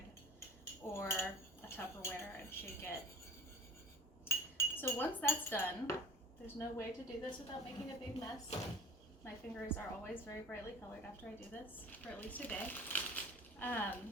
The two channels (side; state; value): both; normal; correlation 0.40